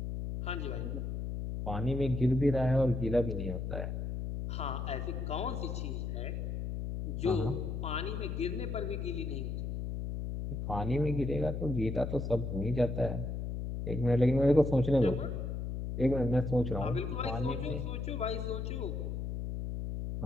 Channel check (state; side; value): noise; left; hum, 3 dB below the sound